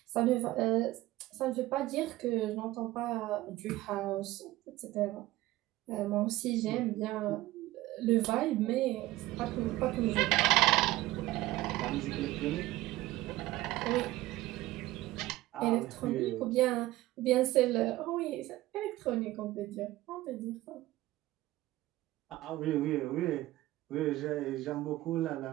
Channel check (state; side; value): quieter; left; 17.2 dB